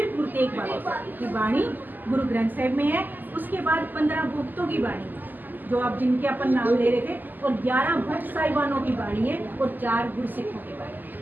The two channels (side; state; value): left; late; 0.087 ms